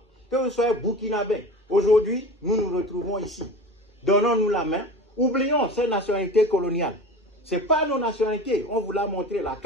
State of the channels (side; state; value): both; normal; correlation 0.34